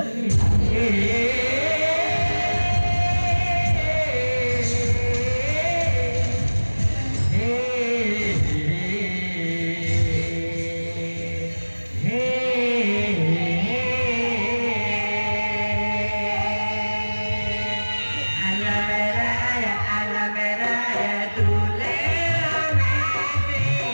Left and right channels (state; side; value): inverted; both; correlation -1.00